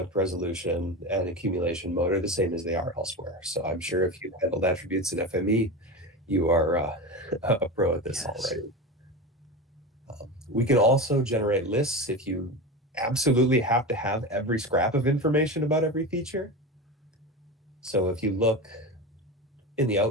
resolution and accumulation mode are the same as they are elsewhere. So I'm sure if you've handled attributes in FME, you are a pro at this already. We can also generate lists if you absolutely have to have every scrap of information about every feature. So if you look in the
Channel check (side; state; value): both; normal; correlation 0.24